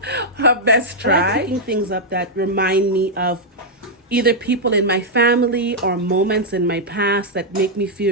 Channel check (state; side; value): normal; both; correlation -0.05